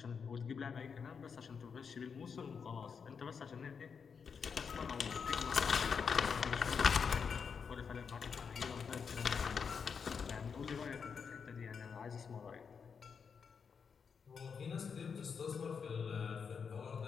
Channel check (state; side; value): quieter; right; 6.2 dB